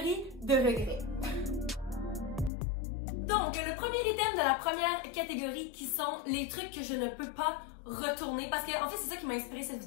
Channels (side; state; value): right; drops out; at 2.5 s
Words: de regrets. Donc, le premier item de la première catégorie qui sont les trucs que je ne peux pas retourner, parce que en fait c'est ça qui m'a inspiré cette